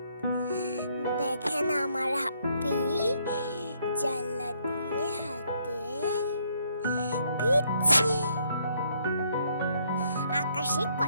দেখেন আমার হাপি জানলা দিয়ে হাতে ভিজছে। আকাশে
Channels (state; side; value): inverted; both; correlation -0.70